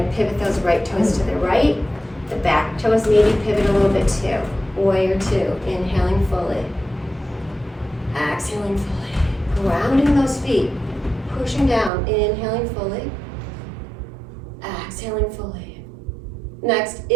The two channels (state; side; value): drops out; left; at 11.9 s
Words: to pivot those right toes to the right. The back toes maybe pivot a little bit too. Warrior 2. Inhaling fully. Exhaling fully. Grounding those feet. Pushing down. Inhaling fully. Exhaling fully. Next,